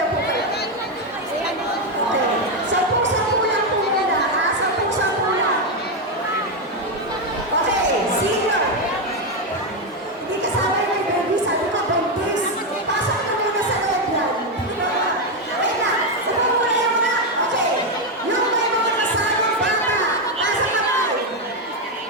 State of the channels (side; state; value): both; normal; correlation 0.06